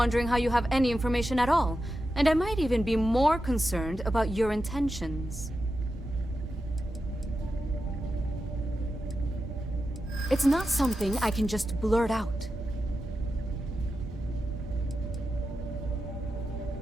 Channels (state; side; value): normal; both; correlation 0.90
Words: how you have any information at all. And I might even be more concerned about your intentions. It's not something I can just blurt out.